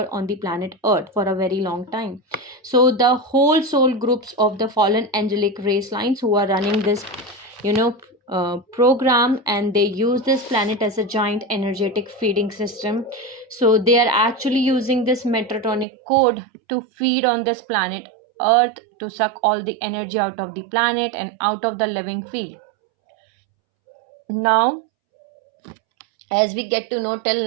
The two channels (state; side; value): drops out; left; at 15.9 s